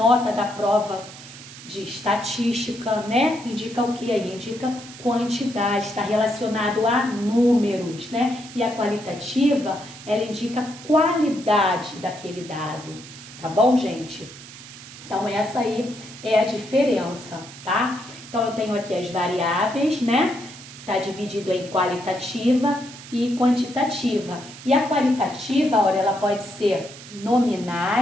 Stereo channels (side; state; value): right; noise; hiss, 16 dB below the sound